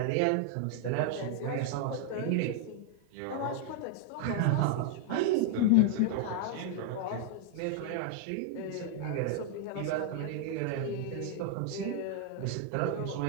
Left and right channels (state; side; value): different; both; correlation 0.00